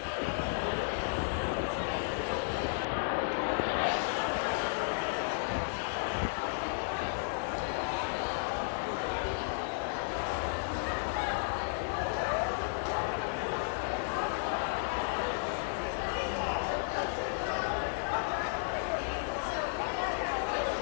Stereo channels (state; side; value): silent; right; digital silence